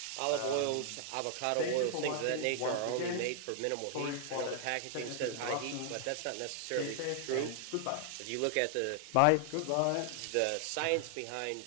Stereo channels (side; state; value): both; different; correlation 0.00